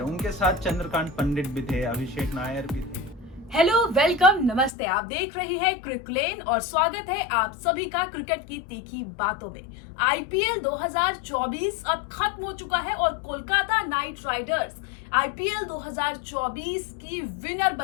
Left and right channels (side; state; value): right; drops out; at 4.7 s